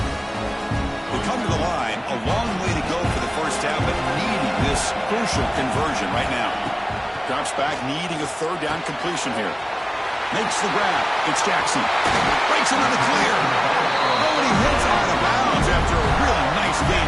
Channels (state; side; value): identical; both; correlation 1.00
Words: this crucial conversion right now. Drops back, needing a third down completion here. Makes the grab. It's Jackson. Breaks into the clear. Oh, and he hits out of bounds after a really nice